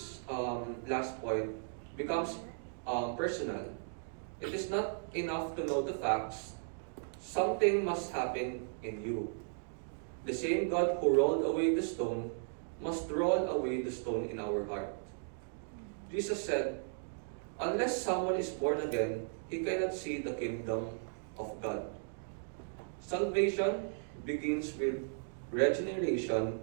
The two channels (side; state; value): left; silent; digital silence